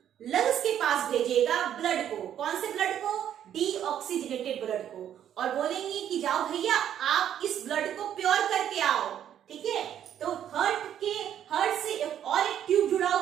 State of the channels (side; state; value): left; quieter; 10.1 dB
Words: लंग्स के पास भेजेगा ब्लड को। कौन से ब्लड को, डीऑक्सीजनेटेड ब्लड को। और बोलेंगे कि जाओ भैया आप इस ब्लड को प्योर करके आओ। ठीक है, तो हार्ट से और एक ट्यूब जुड़ा